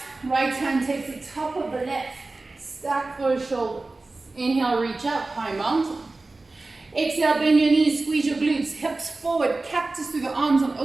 Right hand takes the top of the left. Stack those shoulders. Inhale, reach up, high mountain. Exhale, bend your knees, squeeze your glutes, hips forward, cactus through the arms and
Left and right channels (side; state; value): left; quieter; 3.3 dB